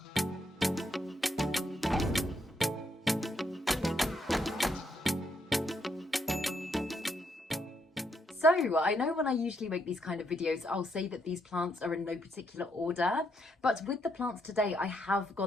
So I know when I usually make these kind of videos, I'll say that these plants are in no particular order, but with the plants today, I have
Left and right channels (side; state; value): both; normal; correlation 0.76